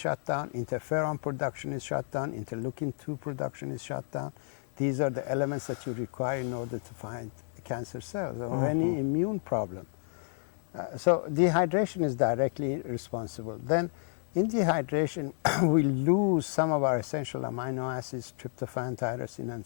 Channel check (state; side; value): silent; right; 57 dB below the other